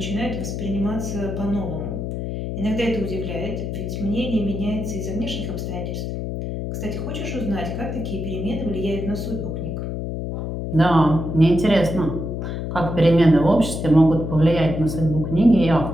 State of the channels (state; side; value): noise; left; hum, 4 dB below the sound